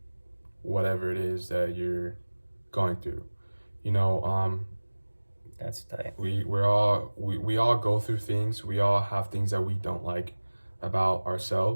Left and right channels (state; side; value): inverted; both; correlation -1.00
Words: whatever it is that you're going through. You know, That's tight. we all go through things. We all have things that we don't like about